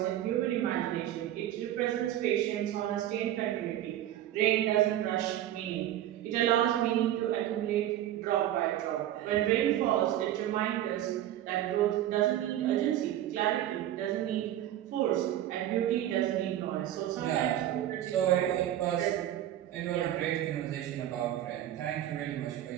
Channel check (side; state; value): left; quieter; 12.5 dB